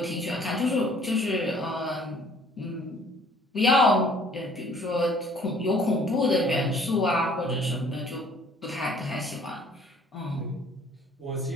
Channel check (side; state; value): both; normal; correlation 0.57